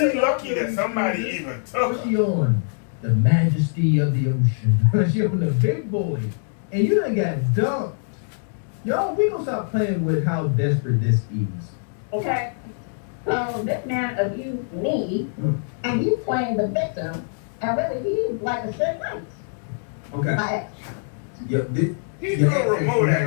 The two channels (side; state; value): right; silent; digital silence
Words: lucky that somebody even took What's her. she on? The Majesty of the Ocean. She on the big boy. And you done got dumped. Y'all, we gonna stop playing with how desperate this is. Okay? So this man abused me, and you playing the victim, And really, he's like a shit nice. Okay. Like, Yeah, this. He your threw a access remote you at have